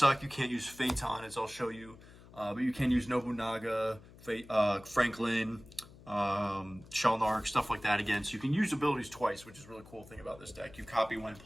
You can't use Phaeton, as I'll show you. But you can use Nobunaga, Franklin, Shalnark, stuff like that again. So you can use abilities twice, which is a really cool thing about this deck. You copy when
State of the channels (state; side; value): noise; left; hum, 21 dB below the sound